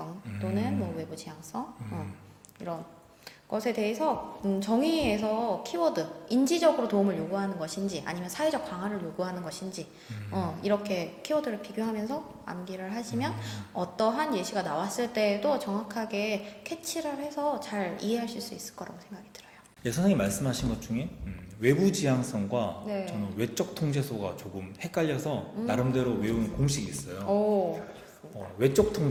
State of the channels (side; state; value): both; identical; correlation 1.00